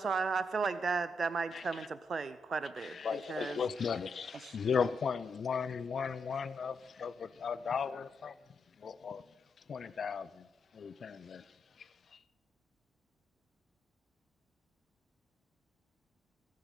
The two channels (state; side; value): normal; both; correlation 0.81